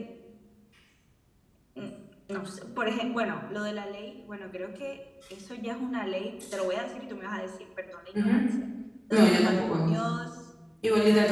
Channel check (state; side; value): identical; both; correlation 1.00